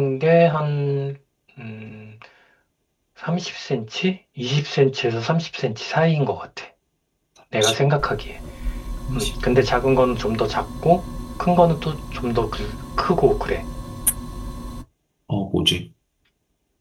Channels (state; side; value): identical; both; correlation 1.00